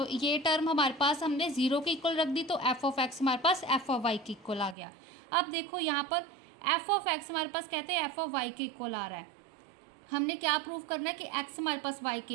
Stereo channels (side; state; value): left; drops out; at 4.8 s